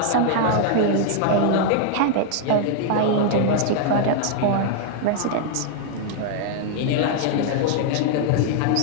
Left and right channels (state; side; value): different; both; correlation 0.00